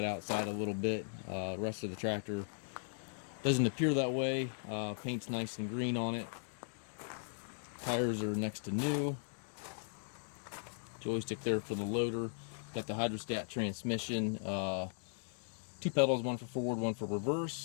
outside a little bit. The rest of the tractor doesn't appear that way. Paint's nice and green on it. Tires are next to new. Joystick there for the loader. Got the hydrostat transmission. 2 pedals, one for forward, one for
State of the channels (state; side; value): silent; right; digital silence